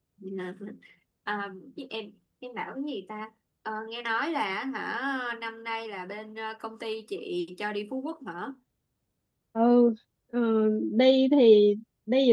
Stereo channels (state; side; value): identical; both; correlation 1.00